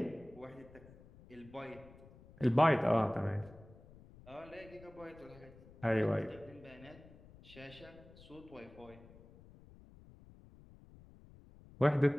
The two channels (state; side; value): noise; left; rumble, 21 dB below the sound